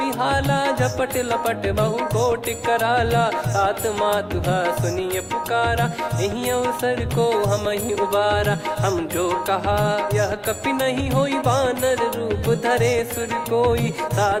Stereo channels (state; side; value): identical; both; correlation 1.00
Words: झपट लपट बहु कोट कराला सात मातुहा सुनिय पुकारा यही अवसर को हम ही उबारा हम जो कहा यह कपि नहीं होई वानर रूप धरे सुर कोई